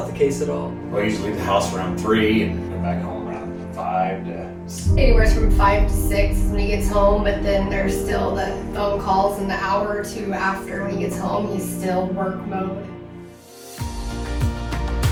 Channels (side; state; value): both; identical; correlation 1.00